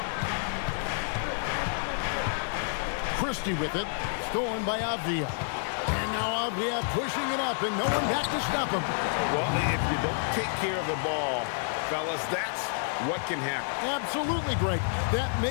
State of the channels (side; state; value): right; silent; digital silence